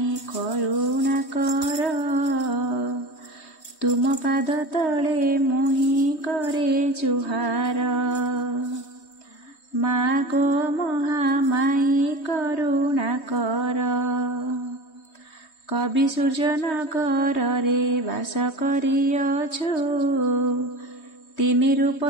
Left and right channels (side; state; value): right; late; 3.2 ms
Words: करुणा कर, तुम पाद तले मोहि करे जुहार। माँ गो महामाई करुणा कर, कवि सूर्यनगर रे बास करिअछु, तीन रूप